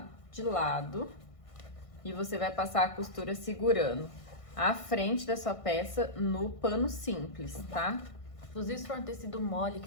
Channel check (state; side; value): late; right; 1.6 ms